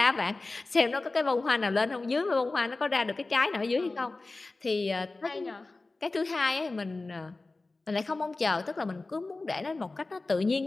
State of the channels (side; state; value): right; quieter; 3.3 dB